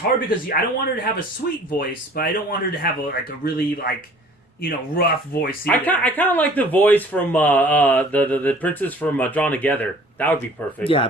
because I don't want her to have a sweet voice, but I don't want her to have a really rough voice either. I kind of like the voice from the princess from Drawn Together. That would be perfect.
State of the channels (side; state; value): both; normal; correlation 0.51